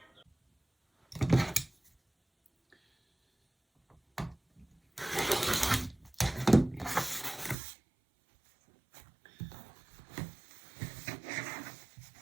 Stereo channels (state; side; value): drops out; left; at 7.6 s